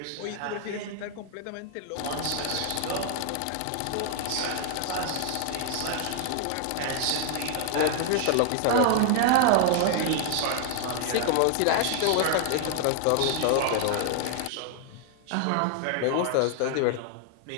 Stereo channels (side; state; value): both; different; correlation 0.00